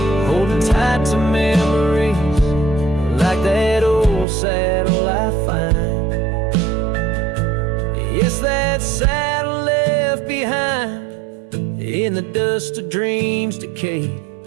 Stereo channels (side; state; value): left; drops out; at 4.2 s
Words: holding tight to memories like that old saddle I find. Yes, that saddle left behind in the dust of dreams decayed,